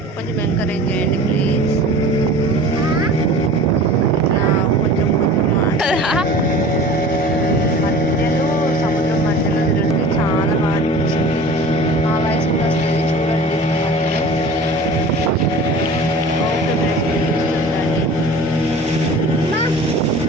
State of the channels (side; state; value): both; normal; correlation 0.41